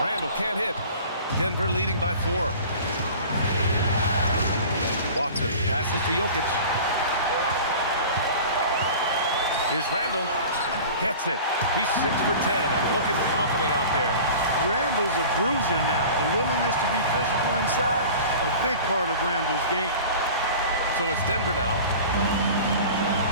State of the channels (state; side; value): inverted; both; correlation -0.39